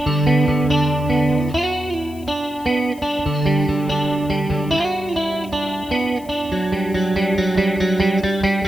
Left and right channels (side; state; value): left; noise; hiss, 23 dB below the sound